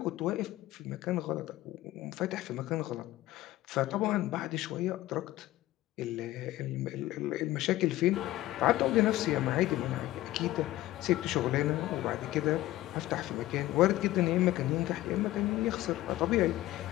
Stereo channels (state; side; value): quieter; right; 16.0 dB